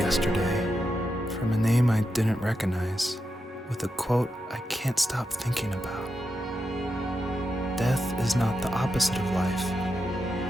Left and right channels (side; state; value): both; normal; correlation 0.87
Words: from a name I didn't recognize, with a quote I can't stop thinking about. Death is not the opposite of life,